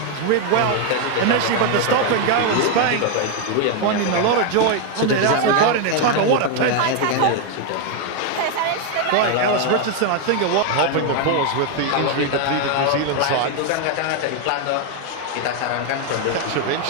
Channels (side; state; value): both; different; correlation 0.01